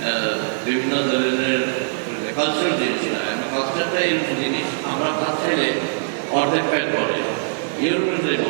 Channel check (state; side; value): silent; left; digital silence